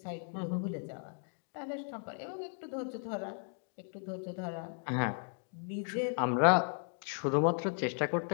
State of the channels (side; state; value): right; silent; 54 dB below the other